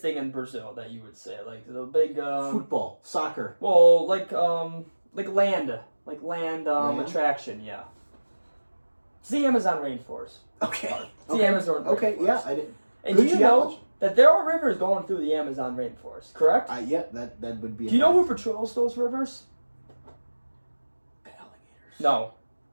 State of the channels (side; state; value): both; inverted; correlation -1.00